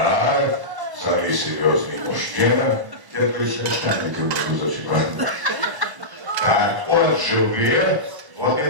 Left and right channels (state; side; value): late; left; 1.0 ms